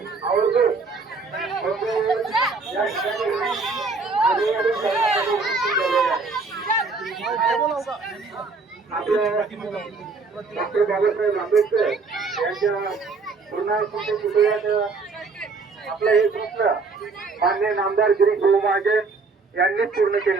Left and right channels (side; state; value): left; quieter; 4.2 dB